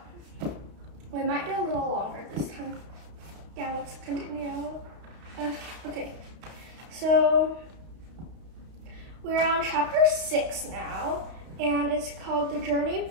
we might do a little longer this time. Yeah, let's continue. Okay, so we're on chapter 6 now, and it's called The Journey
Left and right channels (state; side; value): late; left; 32 ms